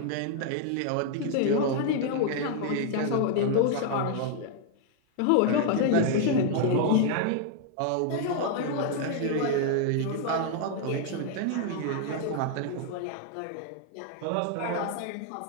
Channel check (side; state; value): both; different; correlation 0.00